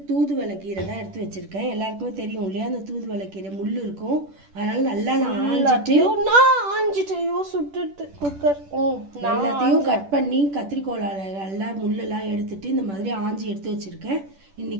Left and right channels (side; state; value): left; late; 10 ms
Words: தூதுவளை கீரை தான் எடுத்து வச்சுருக்கேன். எல்லாருக்குமே தெரியும் இல்லையா, அந்த தூதுவளை கீரை முள் இருக்கும். அதனால் நல்லா நான் ஆஞ்சிட்டு சுட்டுட்டு குக்கர் எல்லாத்தையும் கட் பண்ணி கத்திரிக்கோளால் நல்லா முள்ளெல்லாம் எடுத்துட்டு இந்த மாதிரி ஆஞ்சி எடுத்து வச்சுருக்கேன்.